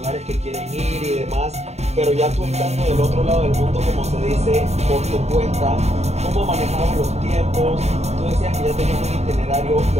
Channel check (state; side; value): late; left; 0.32 ms